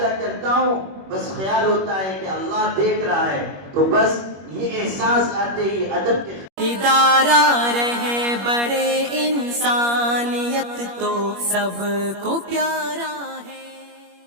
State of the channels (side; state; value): left; late; 21 ms